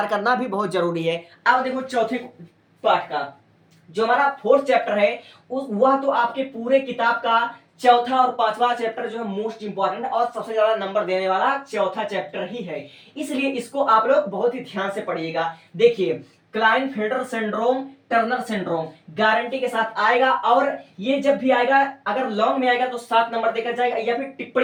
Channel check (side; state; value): both; identical; correlation 1.00